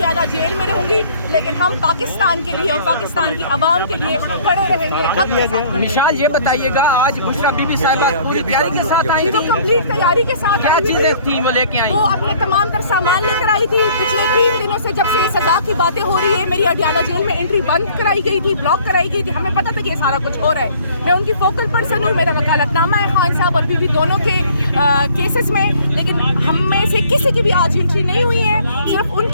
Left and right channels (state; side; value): inverted; both; correlation -0.56